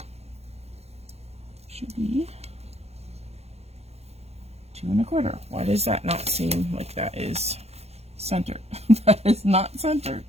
Should be 2 1/4. Why does that not seem like that is centered? That is not centered.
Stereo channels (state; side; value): late; left; 0.30 ms